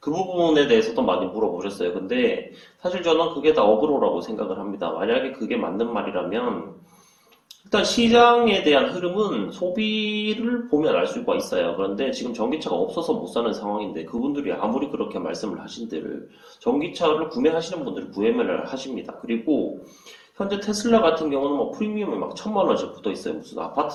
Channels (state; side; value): identical; both; correlation 1.00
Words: 부분에 대해서도 많이 물어보셨어요. 근데 사실 저는 그게 다 어그로라고 생각을 합니다. 만약에 그게 맞는 말이라면 일단 시장에 대한 흐름은 소비를 보면 알 수가 있어요. 그런데 지금 전기차가 없어서 못 사는 상황인데 그분들이 아무리 그렇게 말씀을 하신들 전기차를 구매하시는 분들은 구매를 하십니다. 그리고 현재 테슬라 같은 경우는 뭐 프리미엄이 막 1,000만 원씩 붙어 있어요. 무슨